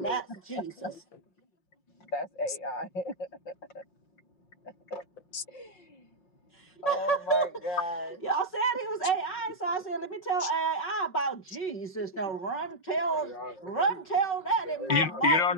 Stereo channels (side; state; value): right; late; 5.9 ms